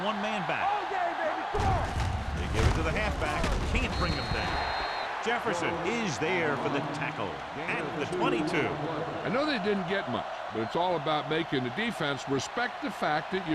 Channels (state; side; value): identical; both; correlation 1.00